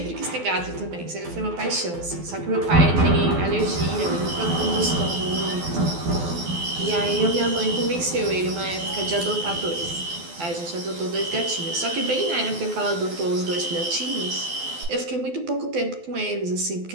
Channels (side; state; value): left; late; 12 ms